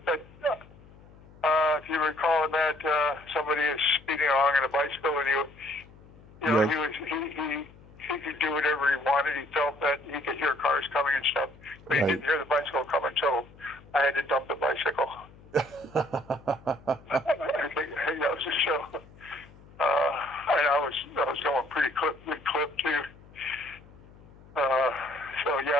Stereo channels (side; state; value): left; noise; hum, 23 dB below the sound